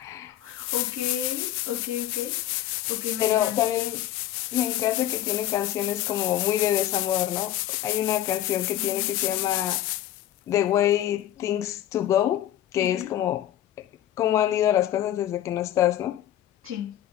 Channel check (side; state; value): right; quieter; 12.5 dB